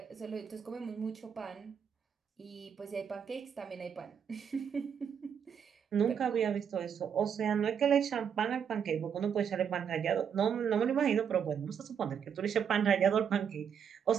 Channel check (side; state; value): left; quieter; 7.6 dB